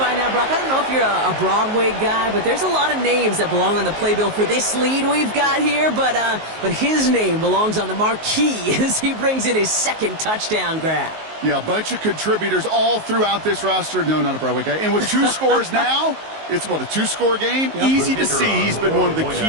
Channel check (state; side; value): late; left; 19 ms